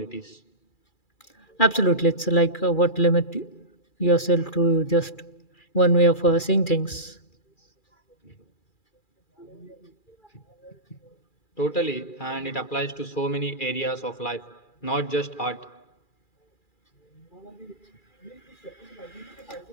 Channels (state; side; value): late; right; 2.4 ms